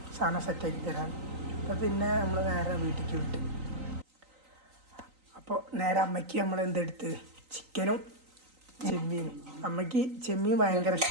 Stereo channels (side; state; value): left; late; 3.9 ms